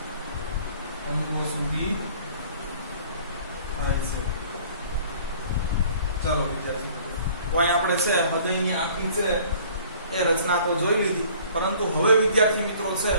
અંગો સુધી થાય છે ચાલો વિદ્યાર્થી મિત્રો તો અહીં આપણે છે હૃદયની આખી છે એ રચના તો જોઈ લીધી પરંતુ હવે વિદ્યાર્થી મિત્રો છે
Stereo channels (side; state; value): both; inverted; correlation -0.53